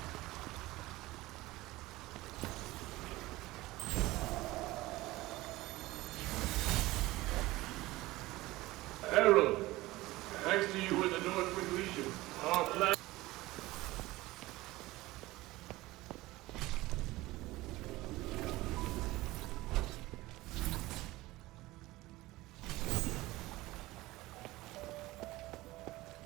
Harold, thanks to you and the Northwind Legion, our plan...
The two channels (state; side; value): quieter; left; 18.9 dB